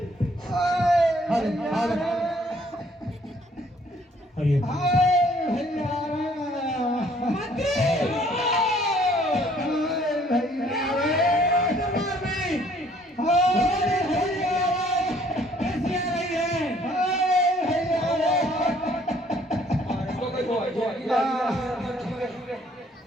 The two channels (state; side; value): normal; both; correlation 0.61